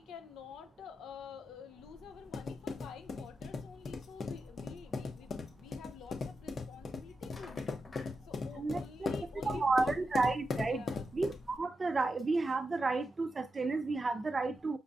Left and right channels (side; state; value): both; normal; correlation 0.88